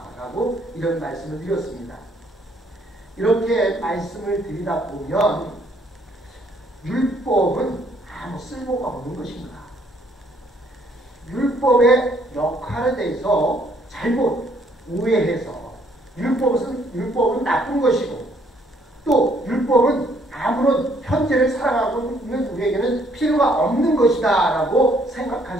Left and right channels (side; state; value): both; normal; correlation 0.66